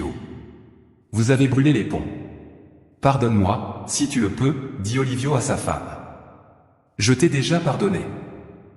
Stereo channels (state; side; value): identical; both; correlation 1.00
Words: Vous avez brûlé les ponts. Pardonne-moi, si tu le peux, dit Olivio à sa femme. Je t'ai déjà pardonné.